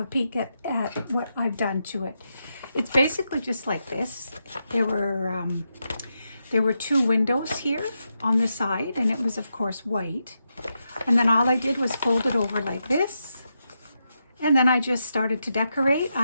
a peek at what I've done to it. It's basically just like this. There were two windows here on the side, and it was of course white. And then all I did was fold it over like this. And then I just started to decorate,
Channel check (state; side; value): inverted; both; correlation -0.85